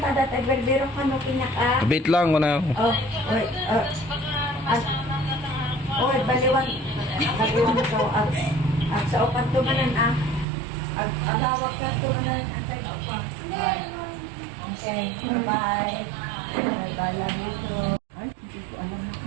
Agberdero ka no pinaka. Bit lang ko na. Wait. Baliwan. Baliwan ko. Sa upat tumanan agawak ka tumanan. Okay. Bye-bye. Bye-bye. Love you too. Ay, hindi ko alam na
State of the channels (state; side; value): drops out; left; at 10.5 s